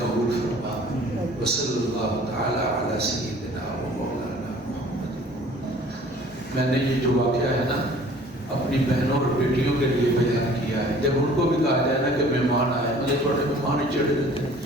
فرما۔ وصلی اللہ تعالی علی سیدنا و مولانا محمد۔ میں نے یہ جو واقعہ ہے نا اپنی بہنوں اور بیٹیوں کے لیے بیان کیا ہے، جب ان کو بھی کہا جائے نا کہ مہمان آئے، مجھے تھوڑے مہمان ہی چڑھ دیتے ہیں،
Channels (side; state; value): both; normal; correlation 0.51